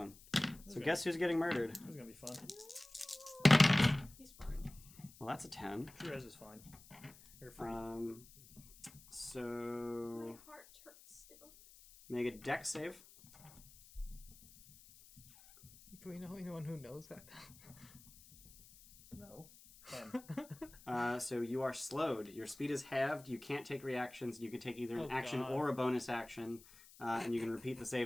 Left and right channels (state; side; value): noise; left; hiss, 21 dB below the sound